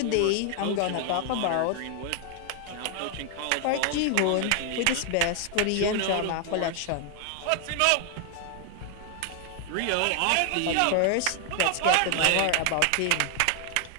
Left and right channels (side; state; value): both; different; correlation 0.00